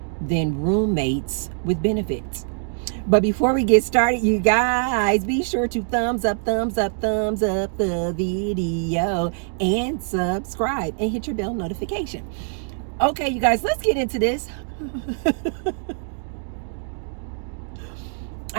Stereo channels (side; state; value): left; silent; 63 dB below the other